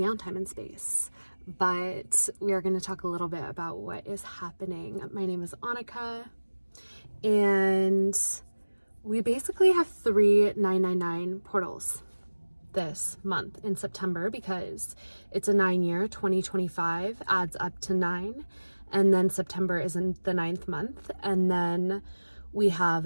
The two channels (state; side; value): inverted; both; correlation -1.00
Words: time and space. But we are going to talk a little bit about what is happening. My name is Annika, and we basically have 3 999 portals this month in September, because it's a 9-year. 2025 adds up to 9, and then September is in the 9th month, and then we